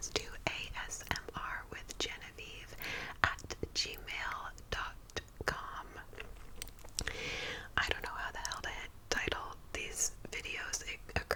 to asmrwithgenevieve@gmail.com. I don't know how the hell to title these videos. It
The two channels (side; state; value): both; identical; correlation 1.00